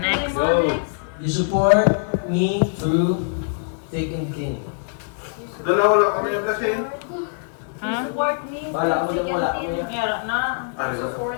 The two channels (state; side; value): silent; right; 56 dB below the other